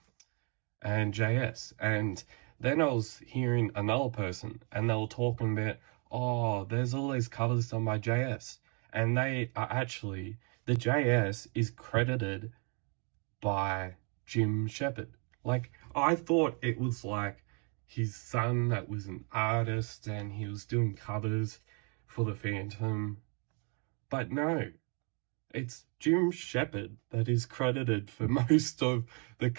and JS. And then I was hearing another person, and they were talking about, oh, there's all these covers done by JS. And they are actually, the JS is credited by Jim Shepard. Like, I thought it was like his son that was an artist and he was doing covers for the Phantom. But no, it's Jim Shepard that is credited for most of the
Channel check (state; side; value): quieter; left; 36.5 dB